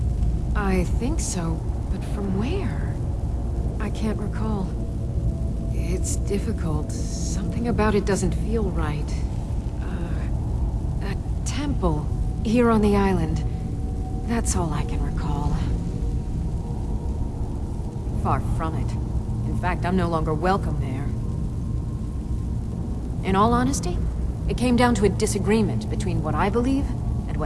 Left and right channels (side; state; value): both; identical; correlation 1.00